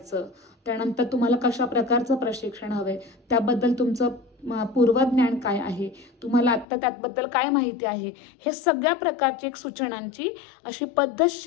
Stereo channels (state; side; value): drops out; right; at 6.7 s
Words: त्यानंतर तुम्हाला कशा प्रकारचं प्रशिक्षण हवंय, त्याबद्दल तुमचं पूर्वज्ञान काय आहे, तुम्हाला आत्ता त्याबद्दल काय माहिती आहे, हे सगळ्या प्रकारची एक सूचनांची अशी